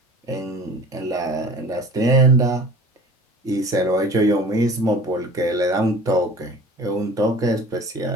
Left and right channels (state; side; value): normal; both; correlation 0.43